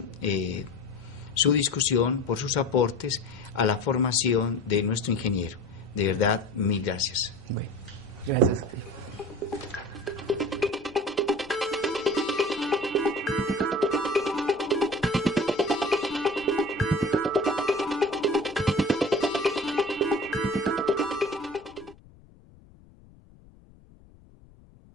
discusión, por sus aportes a la formación de nuestro ingeniero. De verdad, mil gracias. Bueno, gracias a ti.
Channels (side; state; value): left; noise; rumble, 25 dB below the sound